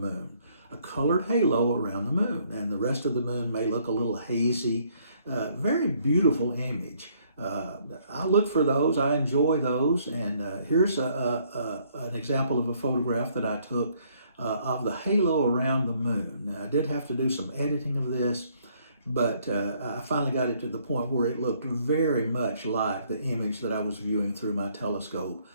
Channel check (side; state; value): both; inverted; correlation -0.66